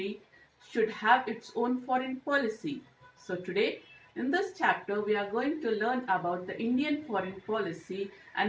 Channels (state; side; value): identical; both; correlation 1.00